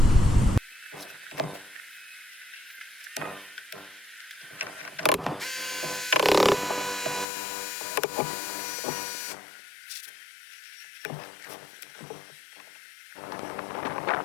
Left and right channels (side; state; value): right; drops out; at 7.2 s